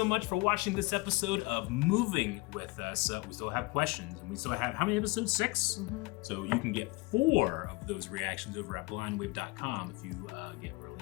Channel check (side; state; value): right; quieter; 24.4 dB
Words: much for watching this episode of Moving with us. We still have questions, and we still have, how many episodes? 6? So you can get 4 of those reactions over at blindwave.com if you get